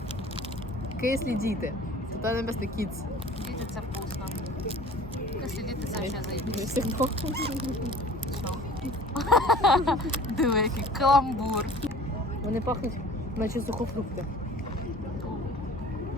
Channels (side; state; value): both; normal; correlation 0.46